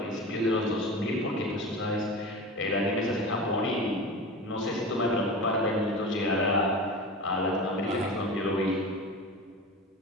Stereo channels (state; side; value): normal; both; correlation 0.31